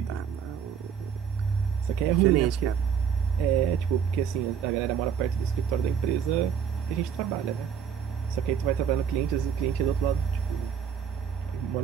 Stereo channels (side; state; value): left; quieter; 7.7 dB